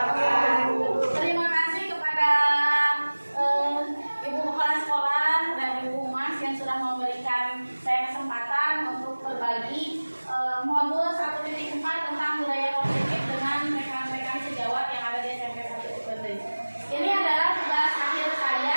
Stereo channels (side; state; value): both; inverted; correlation -1.00